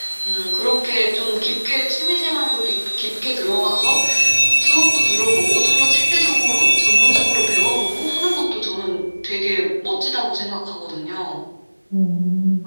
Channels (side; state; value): both; inverted; correlation -1.00